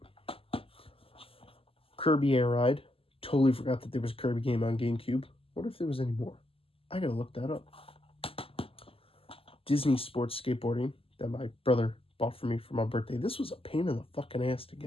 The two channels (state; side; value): late; right; 0.27 ms